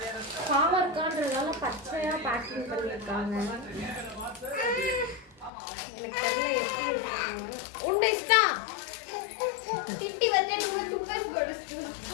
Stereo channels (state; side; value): drops out; right; at 5.5 s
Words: பாவர்கான்றதால பச்சையா பேக்கிங் பண்ணிருக்காங்க. எனக்கு தெரியல எப்படி இருக்காங்க. உண்டு இஷ்டா கிட்டி வந்து துப்பஸ் படுச்சு.